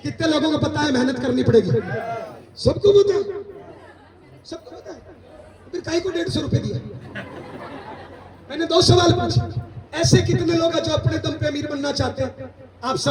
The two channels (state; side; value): identical; both; correlation 1.00